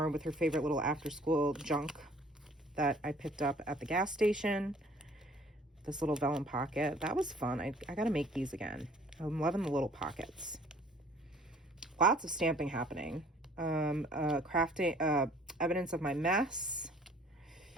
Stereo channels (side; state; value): both; normal; correlation 0.54